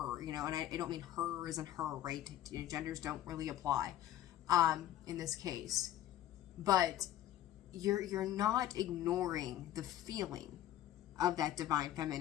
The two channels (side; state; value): right; quieter; 12.8 dB